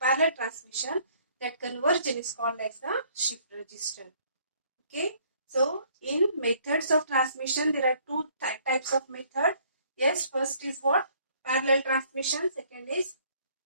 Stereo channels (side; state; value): both; inverted; correlation -0.62